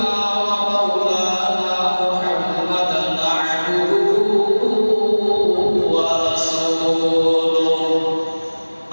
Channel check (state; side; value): inverted; both; correlation -1.00